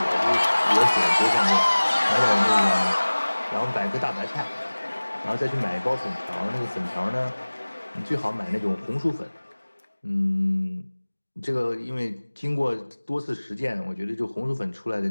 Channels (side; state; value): both; inverted; correlation -1.00